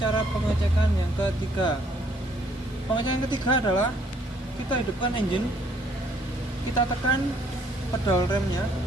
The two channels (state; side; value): normal; both; correlation 0.65